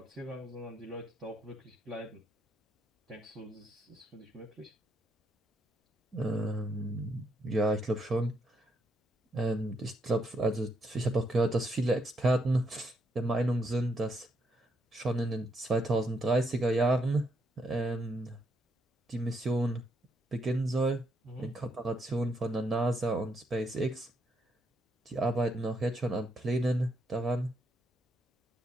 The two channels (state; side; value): normal; both; correlation 0.77